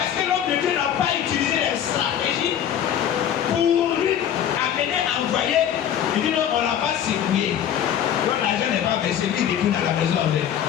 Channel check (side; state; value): right; quieter; 9.7 dB